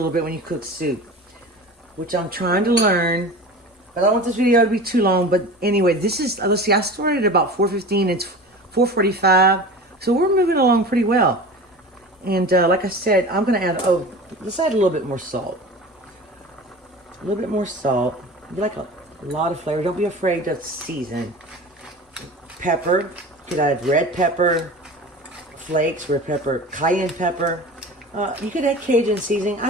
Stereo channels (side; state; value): both; normal; correlation 0.35